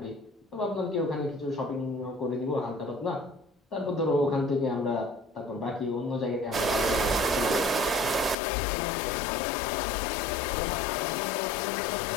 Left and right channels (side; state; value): right; drops out; at 8.3 s